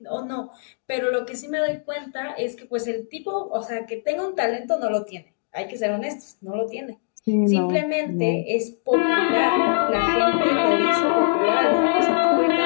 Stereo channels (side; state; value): right; silent; digital silence